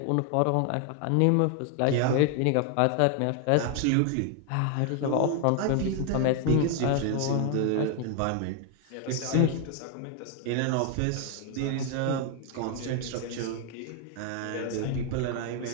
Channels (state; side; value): different; both; correlation 0.00